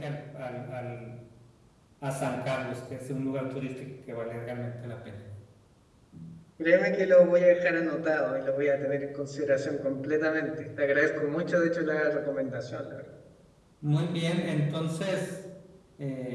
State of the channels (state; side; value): identical; both; correlation 1.00